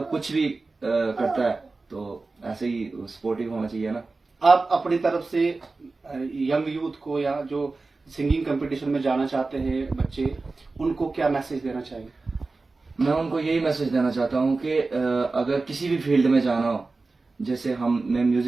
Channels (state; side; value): quieter; left; 3.7 dB